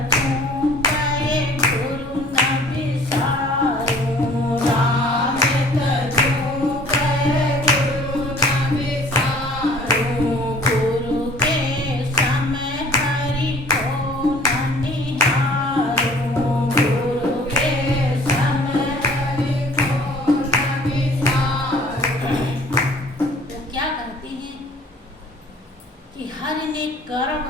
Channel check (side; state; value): both; normal; correlation 0.52